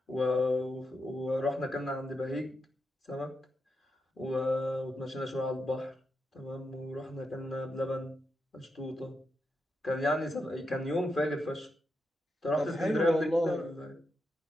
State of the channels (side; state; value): both; normal; correlation 0.85